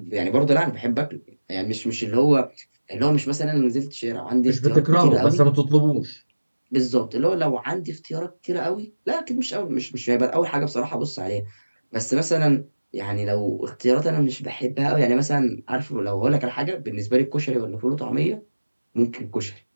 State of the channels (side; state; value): both; inverted; correlation -1.00